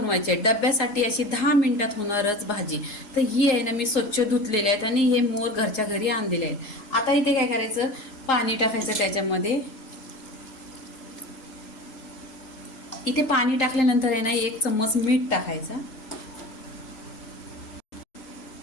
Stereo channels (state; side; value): late; right; 3.8 ms